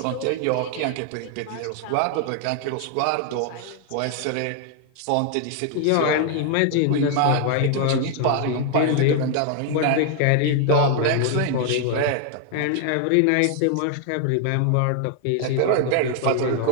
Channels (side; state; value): both; different; correlation 0.00